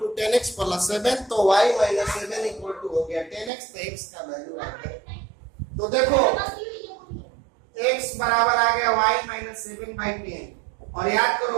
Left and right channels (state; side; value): drops out; left; at 3.5 s